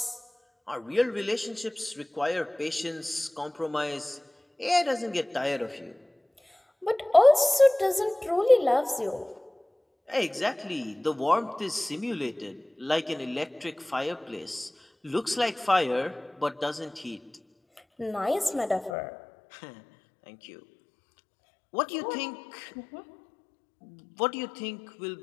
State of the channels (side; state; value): right; drops out; at 18.9 s